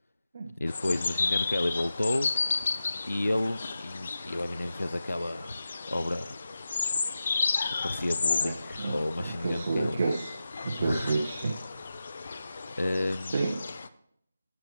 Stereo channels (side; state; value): both; inverted; correlation -0.92